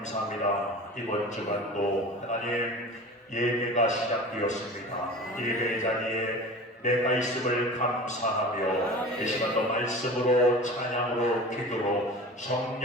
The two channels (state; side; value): normal; both; correlation 0.36